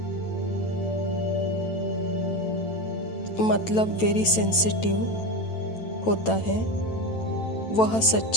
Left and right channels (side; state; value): right; late; 9.1 ms